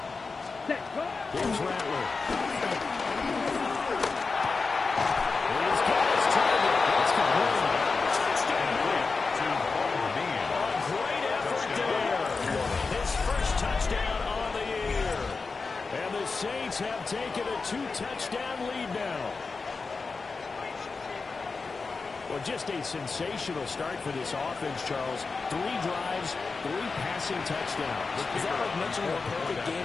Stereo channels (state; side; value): quieter; right; 4.3 dB